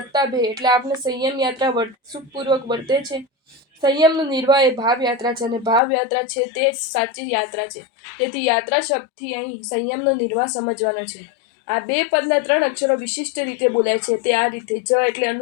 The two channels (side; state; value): right; drops out; at 5.8 s